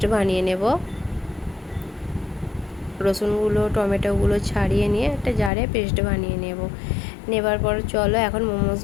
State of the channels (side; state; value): right; drops out; at 5.5 s